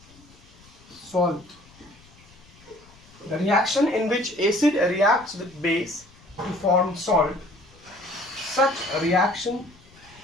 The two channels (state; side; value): noise; left; rumble, 26 dB below the sound